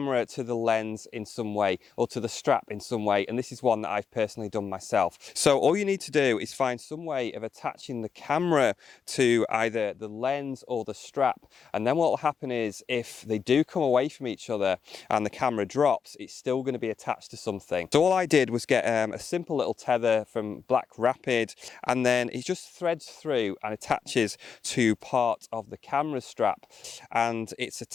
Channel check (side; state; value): right; quieter; 6.5 dB